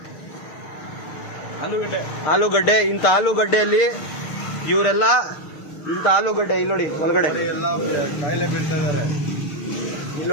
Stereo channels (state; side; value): late; right; 6.7 ms